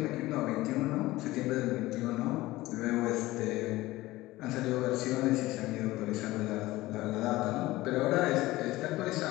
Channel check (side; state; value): right; quieter; 18.2 dB